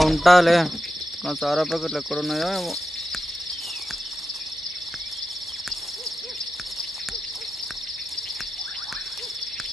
ఉంటాలే. నా సారా ప్యాకెట్లు ఎక్కడున్నాయో ఏమో.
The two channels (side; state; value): both; normal; correlation 0.91